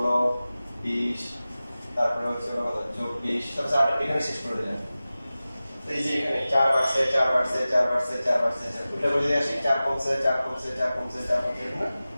20 তারপরে হচ্ছে হলো 24 সব 8 এখানে শেষ করে দিলাম এই যে এখানে 4 বাড়ছে 4 বাড়ছে 4 বাড়ছে 4 বাড়ছে উল্টা করে দিয়ে আসি 4 কমছে 4 কমছে 4 কমছে 4 কমছে না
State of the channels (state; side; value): inverted; both; correlation -0.96